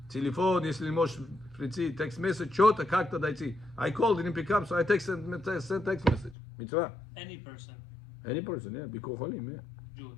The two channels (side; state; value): right; drops out; at 6.4 s